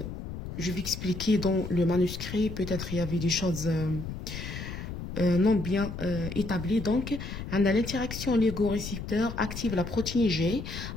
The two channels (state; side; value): noise; left; rumble, 8 dB below the sound